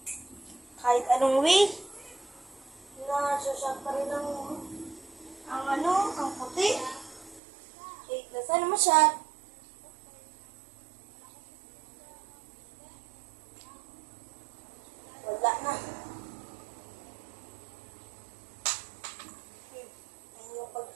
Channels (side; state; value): left; drops out; at 7.4 s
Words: Kahit anong way, nasasyak pa rin ang puti. Sana masyad. Wala na. Ayun yung